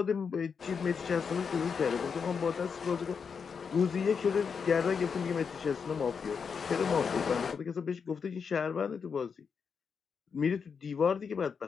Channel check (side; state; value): right; quieter; 6.1 dB